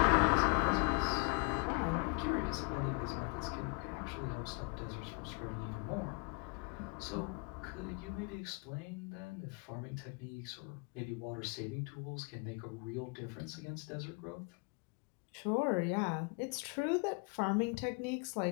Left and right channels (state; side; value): quieter; right; 32.0 dB